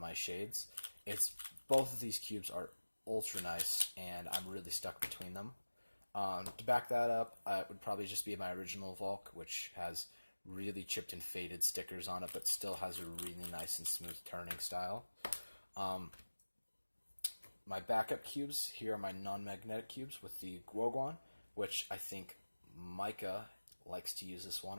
shades. It's both of these cubes are ultra nice, and I'm really stuck between them. To back that up, it would probably just be my original Valk, which has really chipped and faded stickers on it, but still has a really nice and smooth turning style. My backup cubes, here are my non-magnetic cubes with the Guoguan, which I think Micah likes to use this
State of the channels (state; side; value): inverted; both; correlation -1.00